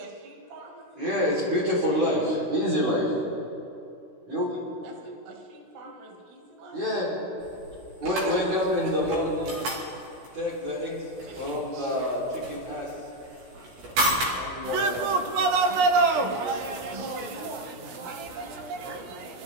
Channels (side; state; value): left; late; 16 ms